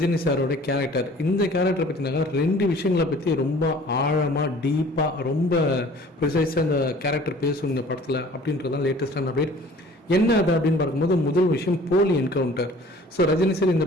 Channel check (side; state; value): both; normal; correlation 0.49